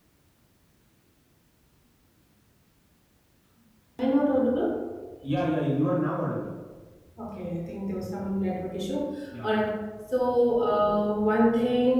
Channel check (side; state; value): both; identical; correlation 1.00